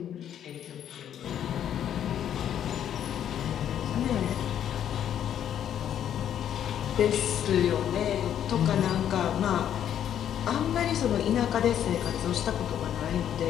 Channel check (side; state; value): right; quieter; 10.0 dB